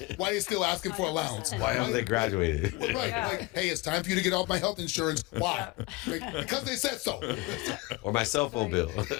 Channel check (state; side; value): quieter; right; 21.7 dB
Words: they still asking for allowance. Why haven't they graduated? Right, Yeah. like, hey, it's time for you to get off my health insurance. Why? Because they said so. Or my cell phone bill.